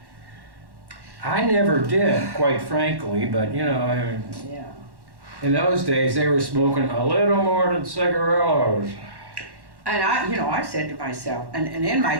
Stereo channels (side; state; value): left; late; 1.1 ms